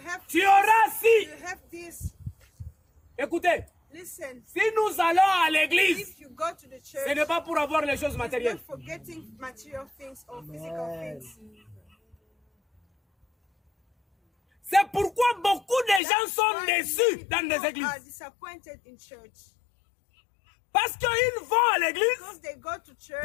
have Tu auras ci. you have this. Écoutez, Listen, si nous allons à l'église, if you go to the ce church, n'est pas pour avoir les choses it's matérielles. not for getting material things or physical things. C'est pourquoi beaucoup de gens That's sont why déçus many dans des people are églises. disappointed in church Parce qu'ils vont à l'église because they go to church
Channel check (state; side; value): drops out; right; at 16.0 s